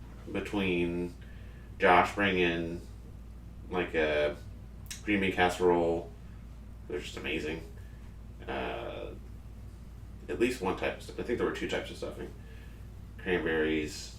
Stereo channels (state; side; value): identical; both; correlation 1.00